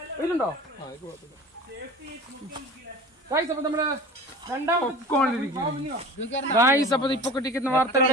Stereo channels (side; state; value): both; normal; correlation 0.39